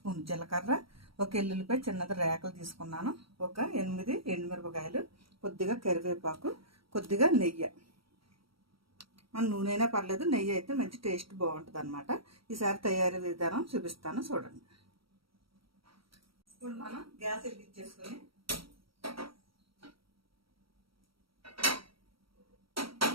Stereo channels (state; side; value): late; left; 0.75 ms